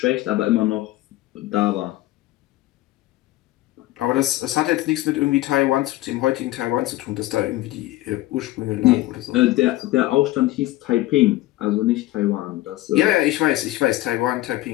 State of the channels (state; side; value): quieter; right; 16.9 dB